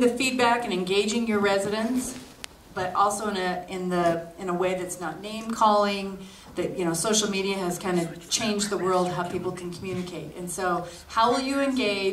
feedback and engaging your residents, but also in a way that's not name calling. That social media has kind of changed the world how people can communicate. And so how will you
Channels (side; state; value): both; identical; correlation 1.00